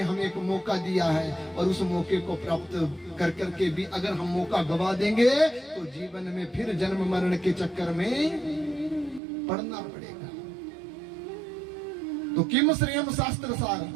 हमें एक मौका दिया है, और उस मौके को प्राप्त कर करके भी अगर हम मौका गवा देंगे तो जीवन में फिर जन्म मरण के चक्कर में पड़ना पड़ेगा। तो किम श्रेयम शास्त्र सार,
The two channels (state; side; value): drops out; left; at 9.2 s